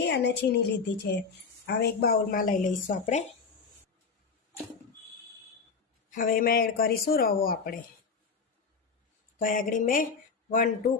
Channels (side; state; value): right; quieter; 5.1 dB